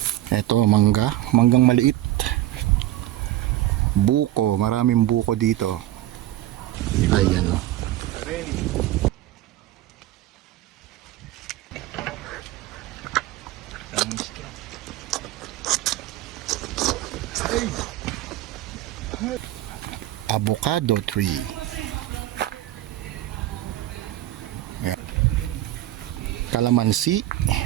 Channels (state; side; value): quieter; left; 14.7 dB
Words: Ito, manggang maliit. Buko, maraming buko dito. Ayan o. Avocado tree. Ayan. Kalamansi.